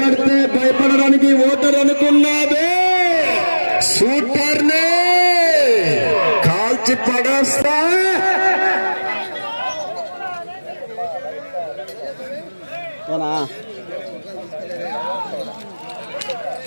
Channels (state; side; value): inverted; both; correlation -1.00